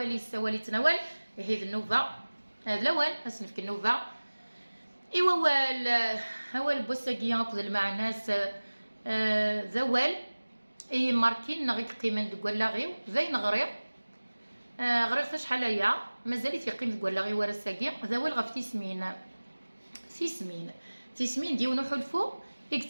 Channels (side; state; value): both; inverted; correlation -1.00